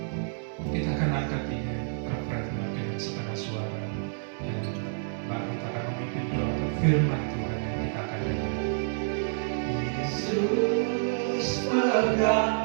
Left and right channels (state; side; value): silent; left; digital silence